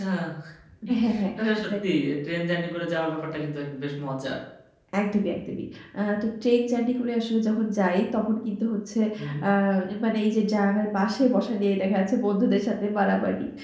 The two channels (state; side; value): identical; both; correlation 1.00